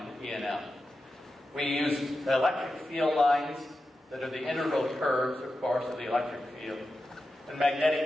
in E&M. We use electric field lines that are the integral curves, of course, of the electric field, and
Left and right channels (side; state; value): both; normal; correlation 0.91